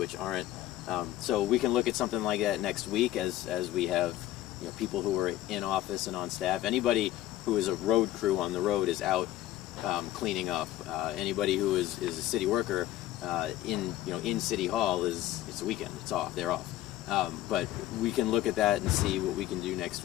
aren't. So we can look at something like that next week as we have, you know, people who are in office and on staff. Anybody who is a road crew on the road is out cleaning up. Anybody who is a city worker in City Hall it's a weekend. It's off. They're off. But we can look at that and see what we can do next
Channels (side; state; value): right; quieter; 14.3 dB